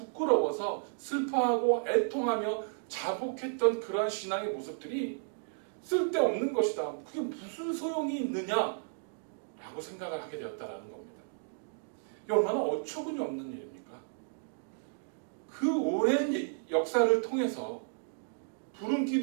슬퍼하고 애통하며 자복했던 그러한 신앙의 모습들이 쓸데없는 것이다. 그게 무슨 소용이 있느냐? 라고 생각을 하게 되었다는 겁니다. 이게 얼마나 어처구니 없는 일입니까? 그 오랜 역사를 통해서 구름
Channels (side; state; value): left; silent; digital silence